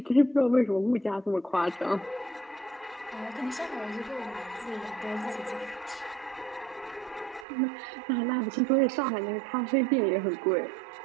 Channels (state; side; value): drops out; left; at 7.5 s